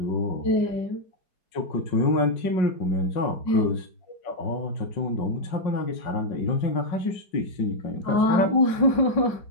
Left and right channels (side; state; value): right; late; 5.3 ms